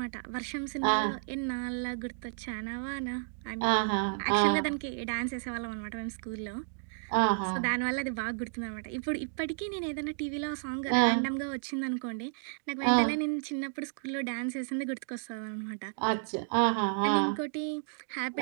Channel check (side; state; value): left; silent; digital silence